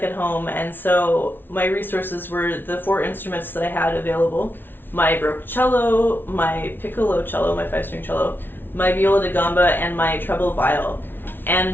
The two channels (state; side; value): late; right; 0.10 ms